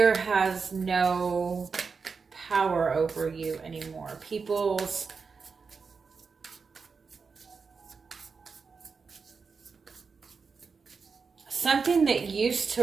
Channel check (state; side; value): quieter; left; 5.1 dB